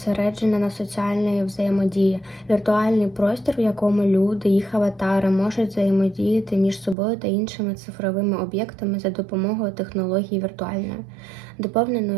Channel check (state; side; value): drops out; left; at 7.0 s